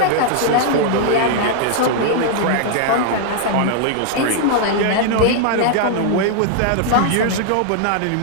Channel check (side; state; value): both; different; correlation 0.00